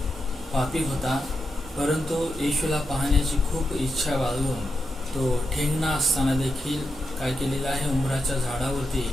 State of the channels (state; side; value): normal; both; correlation 0.86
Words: पापी होता, परंतु येशूला पाहण्याची खूप इच्छा बाळगून तो ठेंगणा असताना देखील काय केलेला आहे, उंबराच्या झाडावरती